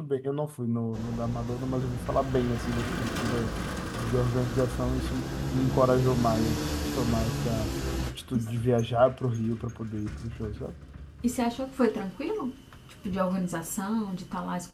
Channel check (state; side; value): identical; both; correlation 1.00